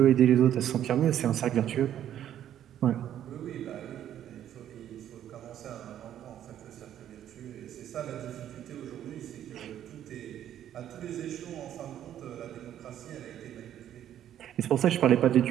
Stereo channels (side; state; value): left; quieter; 10.9 dB